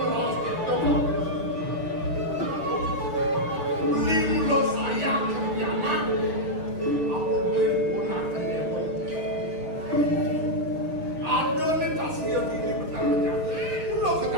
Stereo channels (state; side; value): late; left; 6.5 ms